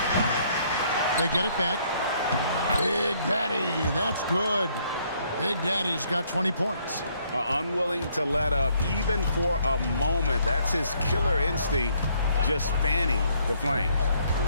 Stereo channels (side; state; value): both; inverted; correlation -0.67